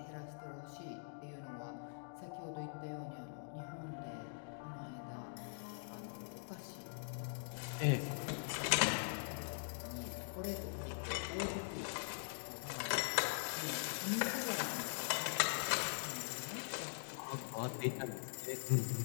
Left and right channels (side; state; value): right; silent; digital silence